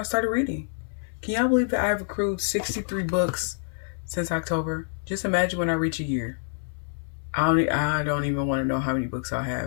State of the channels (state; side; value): silent; right; 60 dB below the other